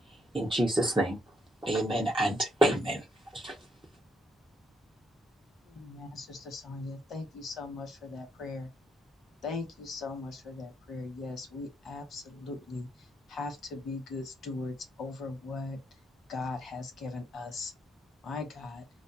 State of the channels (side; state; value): both; normal; correlation 0.75